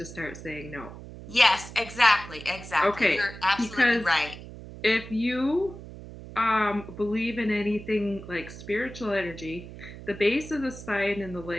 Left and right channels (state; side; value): noise; right; hum, 14 dB below the sound